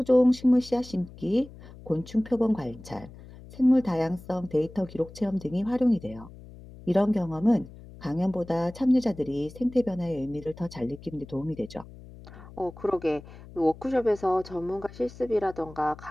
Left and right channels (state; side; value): noise; left; hum, 18 dB below the sound